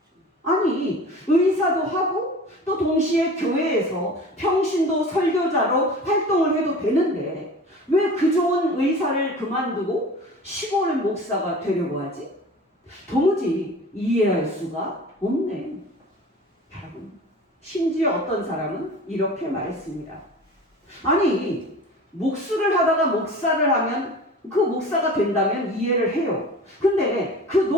아니, 의사도 하고 또 동시에 교회에서 평신도 설교자로 활동을 해도 되는데 왜 그 좋은 의사를 그만두고 시골 목사가 되려고 하지? 도무지 이해할 수가 없네. 여러분, 심지어 어떤 사람은 이렇게 말했습니다. 아니, 목수를 하다가 목사를 하면 그 목사가 된다면 이해를 해요. 근데 그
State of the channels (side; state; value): both; normal; correlation 0.39